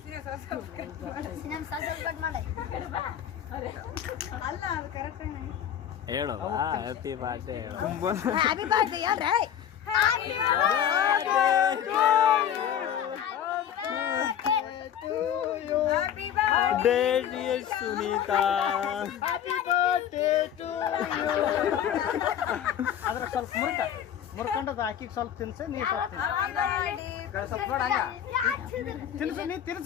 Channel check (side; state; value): right; quieter; 9.6 dB